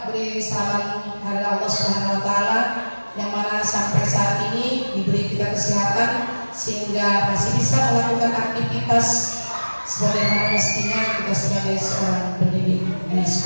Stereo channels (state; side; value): inverted; both; correlation -1.00